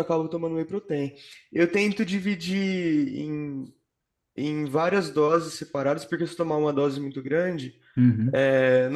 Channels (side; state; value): both; identical; correlation 1.00